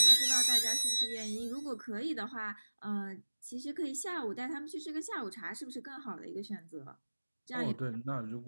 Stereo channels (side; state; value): both; inverted; correlation -1.00